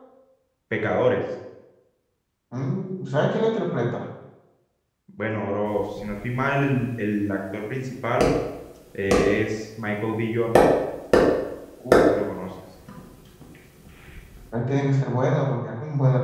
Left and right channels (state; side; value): identical; both; correlation 1.00